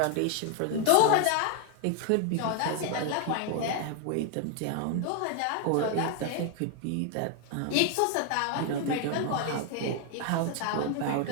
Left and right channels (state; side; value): different; both; correlation 0.00